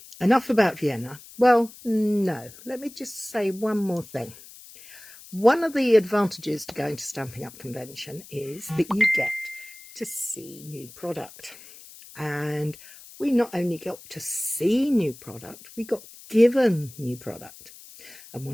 enough about Vienna. Well, no, let me just say one more thing. One of the advantages to going to Stampin' Up convention is that you get to see new product. And we not only got to see new product, we got given new product. And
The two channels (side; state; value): left; noise; hiss, 19 dB below the sound